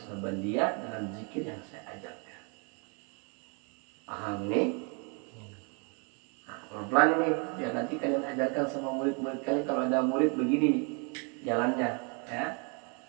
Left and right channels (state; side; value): quieter; left; 35.6 dB